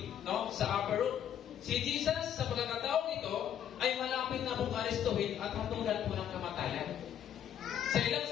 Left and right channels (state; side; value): quieter; right; 9.8 dB